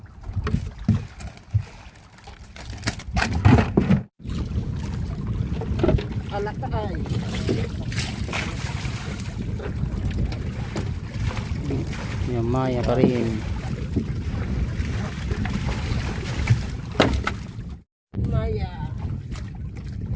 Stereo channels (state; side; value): identical; both; correlation 1.00